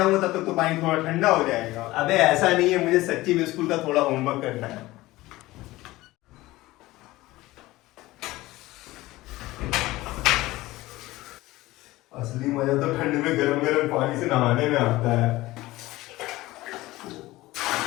तब तक तो पानी थोड़ा ठंडा हो जाएगा। अबे ऐसा नहीं है, मुझे सच्ची में स्कूल का थोड़ा होमवर्क करना है। असली मजा तो ठंड में गरम गरम पानी से नहाने में आता है।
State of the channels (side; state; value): right; quieter; 18.4 dB